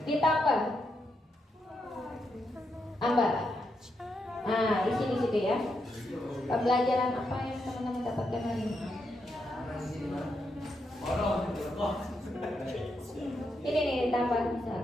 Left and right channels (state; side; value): normal; both; correlation 0.82